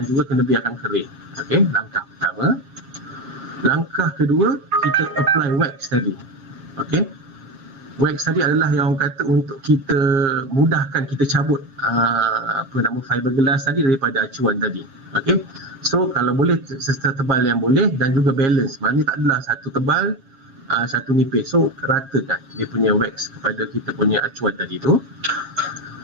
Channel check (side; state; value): left; late; 7.1 ms